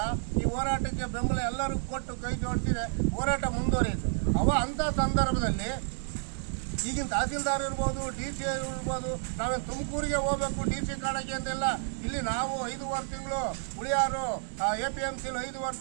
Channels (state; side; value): silent; left; 56 dB below the other